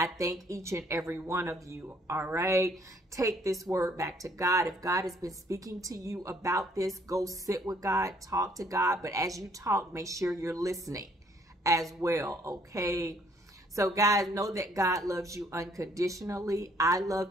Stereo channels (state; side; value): normal; both; correlation 0.64